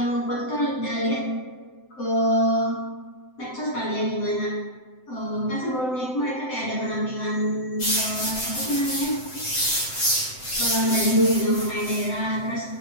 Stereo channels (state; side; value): late; right; 7.8 ms